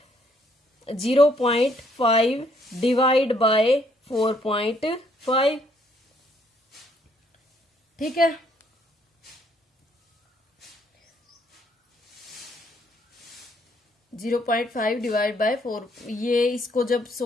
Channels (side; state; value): both; normal; correlation 0.68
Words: 0.5 डिवाइड बाय 4.5। ठीक है, जीरो 0.5 डिवाइड बाय 4, ये इसको जब